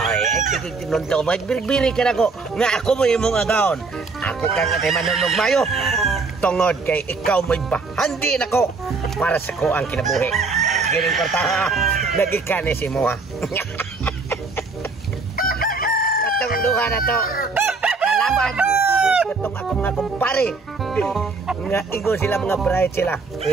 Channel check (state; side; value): quieter; left; 4.1 dB